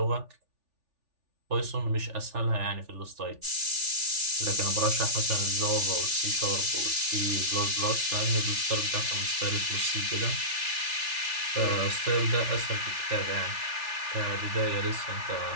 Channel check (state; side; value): late; left; 3.4 ms